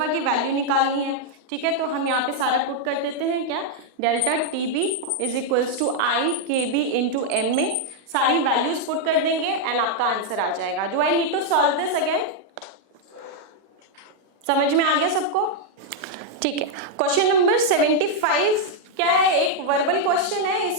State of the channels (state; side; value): late; left; 38 ms